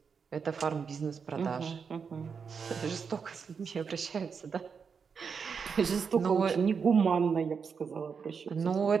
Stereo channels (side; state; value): left; quieter; 6.0 dB